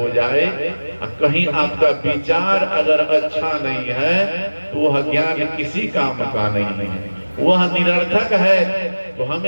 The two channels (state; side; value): inverted; both; correlation -1.00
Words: जाए, कहीं आपका विचार अगर अच्छा नहीं है तो वह ज्ञान किसी काम का नहीं है, वह निरर्थक है। तो